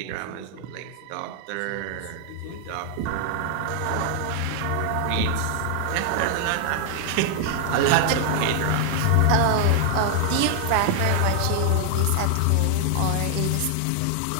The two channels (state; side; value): different; both; correlation 0.00